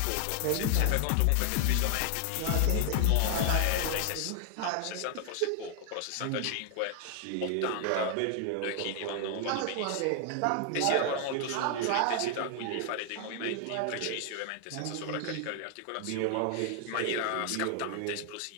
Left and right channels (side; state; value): both; different; correlation 0.00